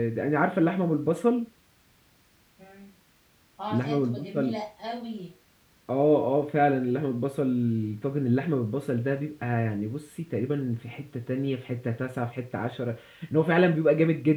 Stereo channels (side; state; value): both; identical; correlation 1.00